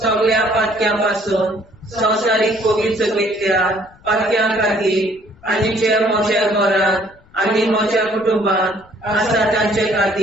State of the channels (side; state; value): left; noise; rumble, 28 dB below the sound